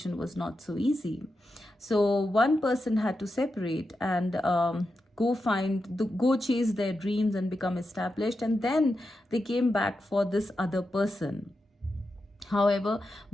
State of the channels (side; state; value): both; normal; correlation 0.88